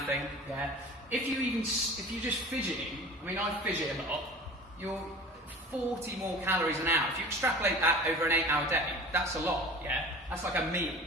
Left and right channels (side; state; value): both; normal; correlation 0.39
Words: Yeah. If you're just fidgeting, I mean, I fidget a lot. You're 40 more calories an hour. If you extrapolate that over an 8-hour day, that's a lot. Yeah. That's like a meal.